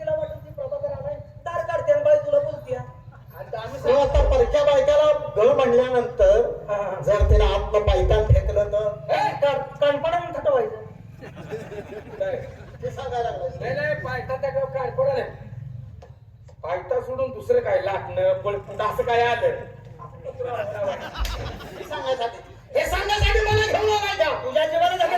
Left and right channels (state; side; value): identical; both; correlation 1.00